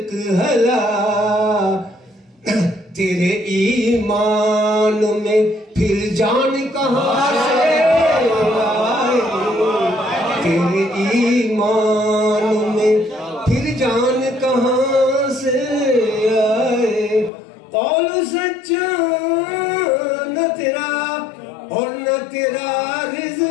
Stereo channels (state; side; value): drops out; right; at 17.3 s